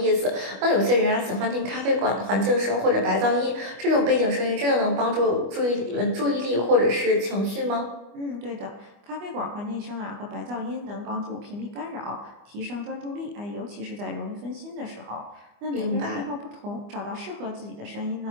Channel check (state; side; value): late; left; 25 ms